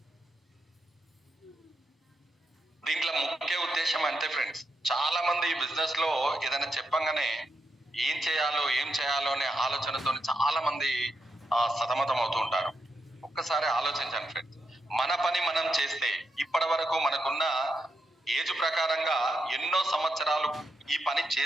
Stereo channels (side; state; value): both; normal; correlation 0.82